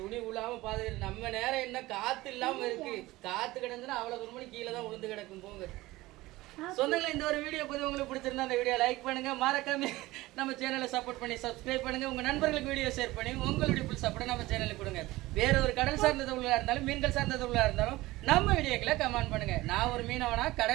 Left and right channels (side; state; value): left; quieter; 18.9 dB